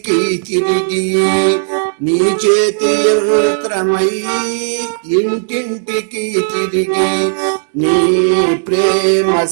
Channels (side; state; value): left; silent; digital silence